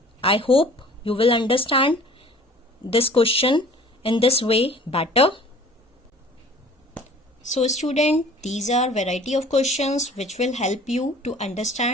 I hope you will understand this question in this way better. So student, these are variety of questions which will help you to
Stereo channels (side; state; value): both; normal; correlation 0.48